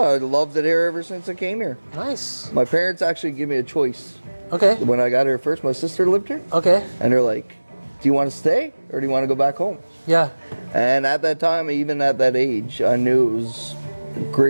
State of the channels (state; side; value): inverted; both; correlation -1.00